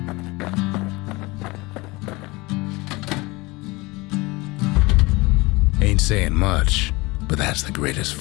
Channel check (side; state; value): right; quieter; 23.4 dB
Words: Ain't saying much, but that's the greatest